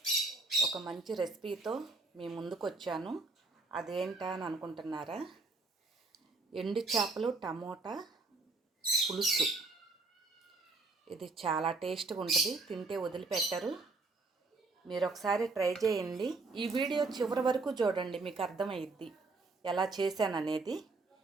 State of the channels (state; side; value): quieter; left; 3.6 dB